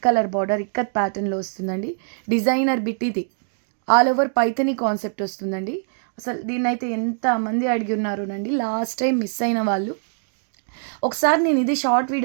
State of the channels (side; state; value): left; silent; digital silence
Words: కలర్ బార్డర్ ఇక్కత్ ప్యాటర్న్లో వస్తుందండి. డిజైనర్ బిట్ ఇది. ఆల్ ఓవర్ పైథనీ కాన్సెప్ట్ వస్తుందండి. అసలు దీన్నైతే ఎంతమంది అడిగి ఉన్నారోనండి. లాస్ట్ టైం మిస్ అయిన వాళ్ళు, ఒకసారి నేను ఇది షార్ట్